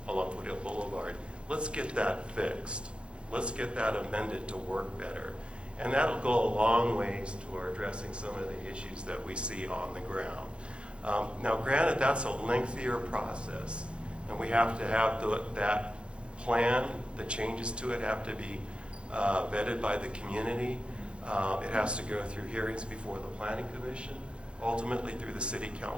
along Foothill Boulevard. Let's get that fixed. Let's get that amended to work better. And that'll go a long ways toward addressing some of the issues that we see on the ground. Now, granted, that's a lengthier process, and we have to have that plan, the changes to it have to be vetted by the community. It has to go through hearings before the Planning Commission, ultimately through the City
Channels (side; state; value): left; late; 0.057 ms